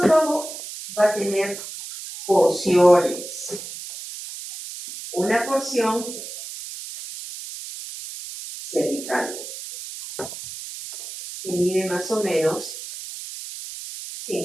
va a tener porciones. Una porción cervical, que mide más o menos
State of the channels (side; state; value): right; noise; hiss, 11 dB below the sound